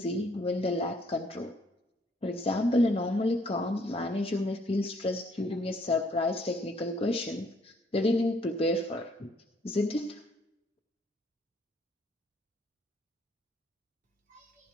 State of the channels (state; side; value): normal; both; correlation 0.65